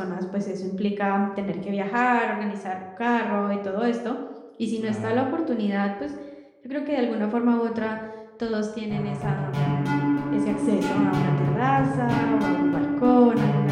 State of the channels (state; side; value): identical; both; correlation 1.00